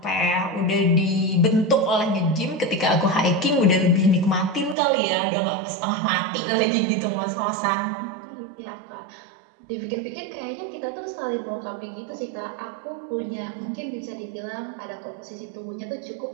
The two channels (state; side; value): drops out; left; at 4.8 s